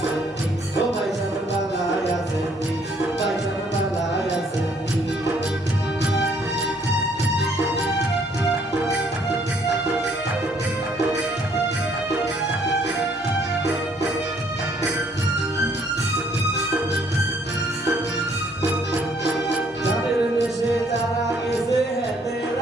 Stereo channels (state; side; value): normal; both; correlation 0.65